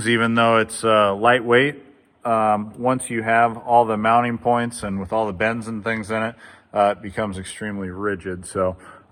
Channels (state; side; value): identical; both; correlation 1.00